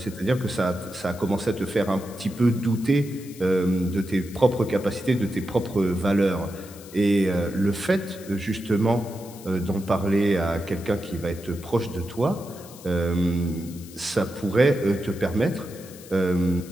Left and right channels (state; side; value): noise; left; hiss, 19 dB below the sound